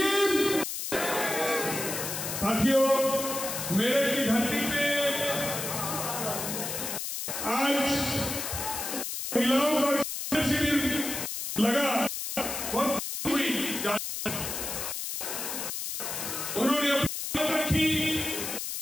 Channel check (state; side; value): noise; left; hiss, 4 dB below the sound